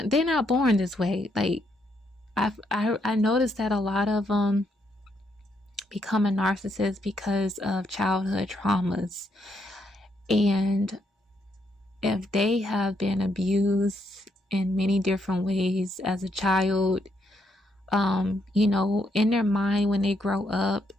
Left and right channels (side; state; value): both; normal; correlation 0.76